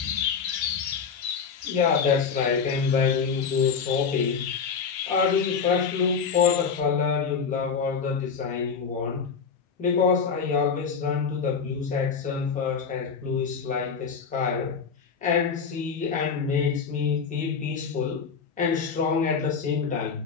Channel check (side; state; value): right; quieter; 6.0 dB